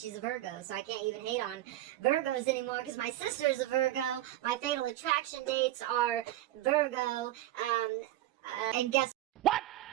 a Virgo, so I can't even hate on Virgos anymore, because my sister's a Virgo, my fatal attraction dates are Virgo, and guess what?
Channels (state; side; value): quieter; left; 14.7 dB